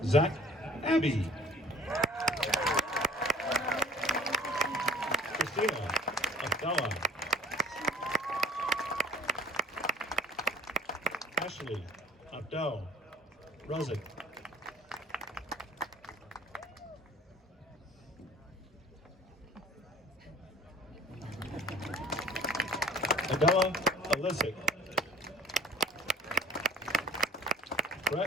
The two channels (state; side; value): normal; both; correlation 0.47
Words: Zach Abbey. Christina Abdallah. Ashley Abdel Rozik. Adela Alisic.